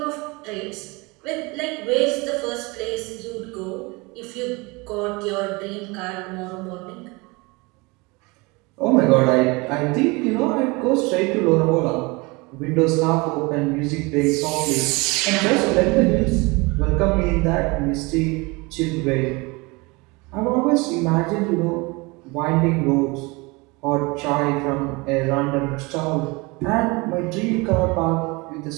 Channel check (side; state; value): left; quieter; 25.8 dB